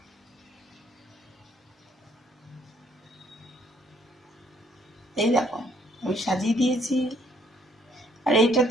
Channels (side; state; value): both; normal; correlation 0.66